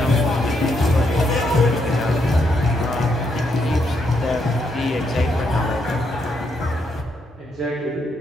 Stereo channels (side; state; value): both; normal; correlation 0.77